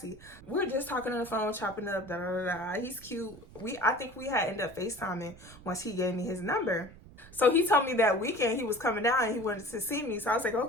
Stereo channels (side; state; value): right; noise; rumble, 20 dB below the sound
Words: We were just talking on the phone, chopping up, da da da. He's cute. I think we had ended up FaceTiming once he gave me his number. So he told me that weekend he was coming down and he wanted to see me. So I was like,